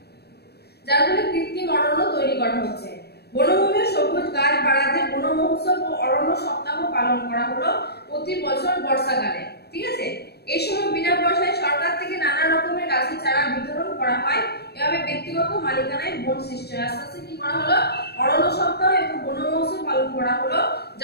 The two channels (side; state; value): right; late; 0.47 ms